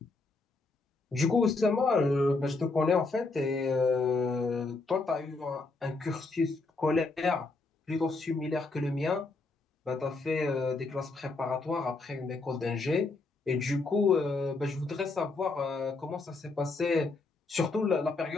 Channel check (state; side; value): quieter; right; 3.6 dB